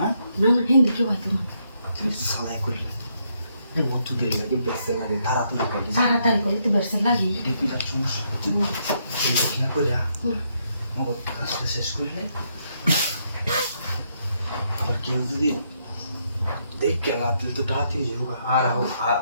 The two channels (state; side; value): inverted; both; correlation -0.76